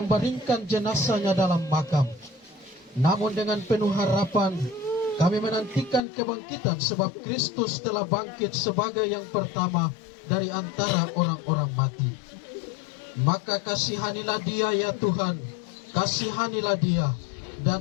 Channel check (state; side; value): drops out; right; at 6.0 s